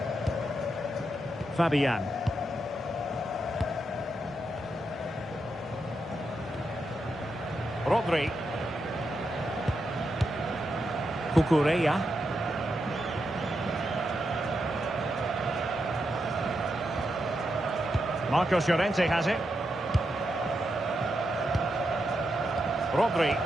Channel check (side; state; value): both; normal; correlation 0.84